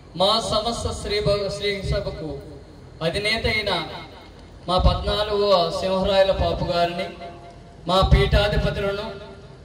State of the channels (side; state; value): both; identical; correlation 1.00